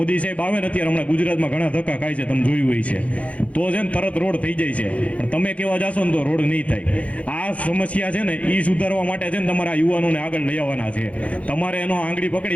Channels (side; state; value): right; late; 0.064 ms